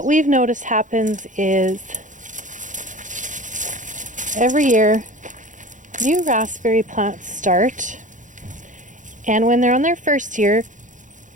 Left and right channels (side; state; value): left; late; 0.37 ms